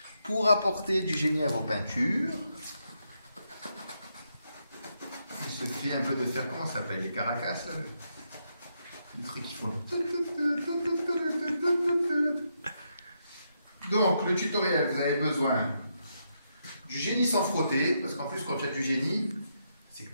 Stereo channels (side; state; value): both; inverted; correlation -0.80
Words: Pour apporter du génie à vos peintures, il suffit un peu de faire, comment ça s'appelle, les caracas là, les trucs qui font. Donc, le tutoriel, vous avez besoin du génie sans frotter, parce qu'en plus, quand tu as du génie, c'est que tu